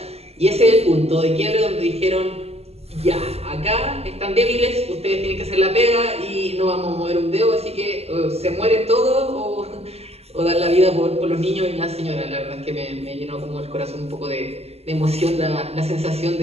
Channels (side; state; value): left; late; 0.30 ms